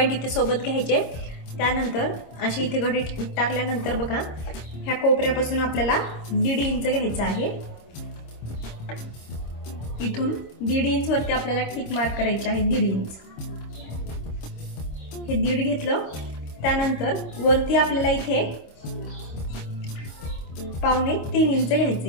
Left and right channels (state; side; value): late; right; 26 ms